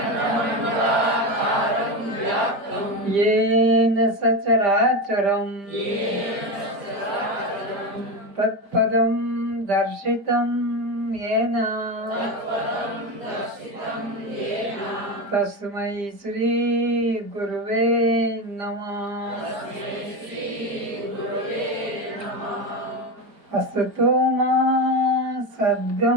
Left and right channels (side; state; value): left; late; 4.5 ms